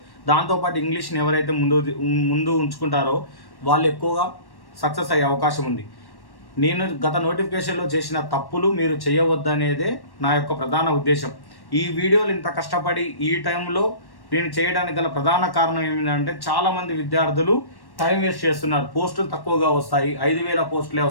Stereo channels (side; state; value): right; late; 1.1 ms